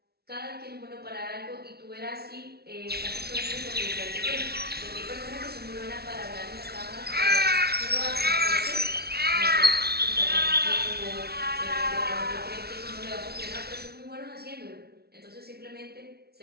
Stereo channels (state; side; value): late; left; 0.46 ms